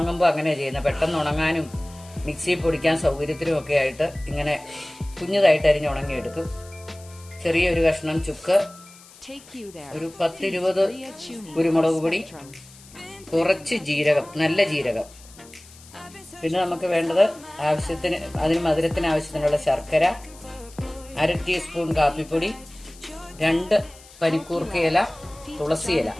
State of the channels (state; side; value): noise; left; hiss, 22 dB below the sound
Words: അങ്ങനെയാണ് ചെയ്യുന്നത്. പെട്ടെന്ന് ഉണങ്ങാനും മിക്സിയിൽ പൊടിക്കാൻ സൗകര്യത്തിനും ഒക്കെ ആയിട്ട് ഇങ്ങനെ കുഞ്ഞതായിട്ട് അരിഞ്ഞ് ഉണങ്ങിയെടുക്കും. ചെറിയൊരു കഷ്ണം ചുക്ക്, ഒരു 10-20 കുരുമുളക് പൊടി, കുറച്ച് ജീരകം, നല്ല ജീരകം. പിന്നെ നമുക്ക് വേണ്ടത് ആവശ്യത്തിന്, അതിന് മധുരത്തിന് ആവശ്യത്തിനുള്ള ശർക്കര, 1/2 ടീസ്പൂൺ കാപ്പിപ്പൊടി, 2 പനിക്കൂർക്കയില, തുളസിയില.